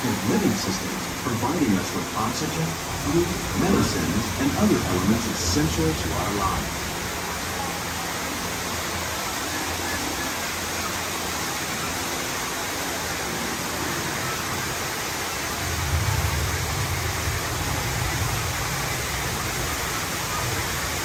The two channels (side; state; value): both; identical; correlation 1.00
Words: living systems, providing us with oxygen, food, medicines, and other elements essential to our lives.